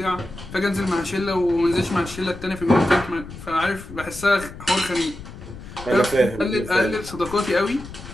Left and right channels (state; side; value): noise; left; rumble, 14 dB below the sound